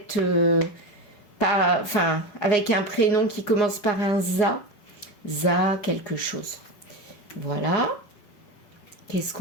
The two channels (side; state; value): right; late; 5.3 ms